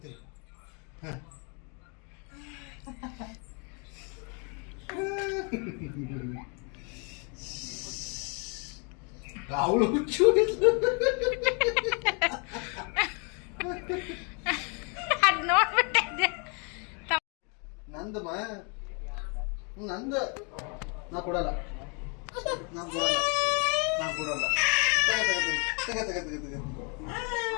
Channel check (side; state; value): right; quieter; 35.3 dB